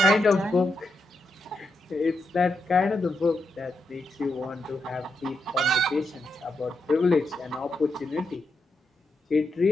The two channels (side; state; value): both; normal; correlation 0.84